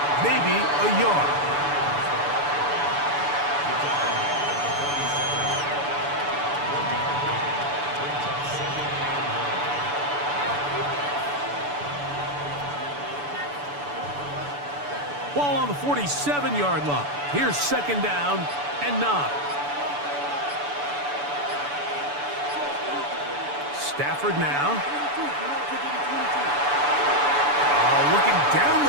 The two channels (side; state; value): left; late; 6.9 ms